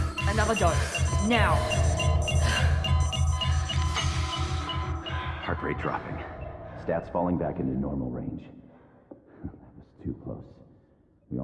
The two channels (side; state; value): both; identical; correlation 1.00